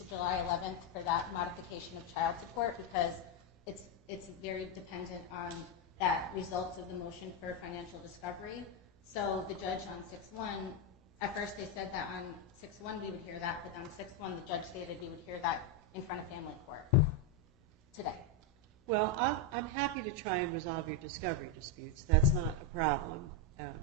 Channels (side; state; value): both; normal; correlation 0.04